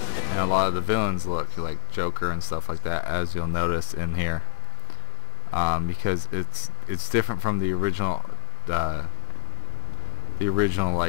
a lot of the villains look, like Joker and stuff like that, as you'll notice in here. Because it's different from the original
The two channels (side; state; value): right; silent; digital silence